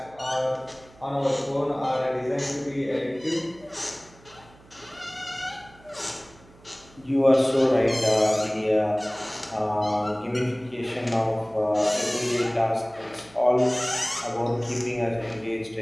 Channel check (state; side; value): noise; right; hum, 25 dB below the sound